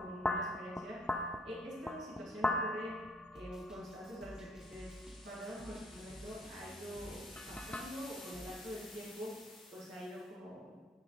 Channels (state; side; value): normal; both; correlation 0.63